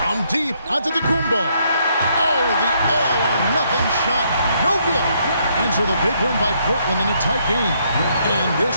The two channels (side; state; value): both; inverted; correlation -0.72